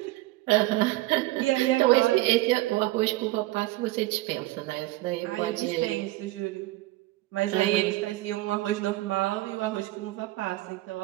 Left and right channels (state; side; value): quieter; left; 18.3 dB